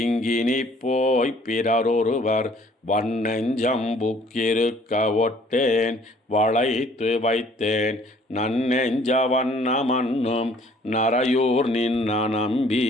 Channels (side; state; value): both; normal; correlation 0.58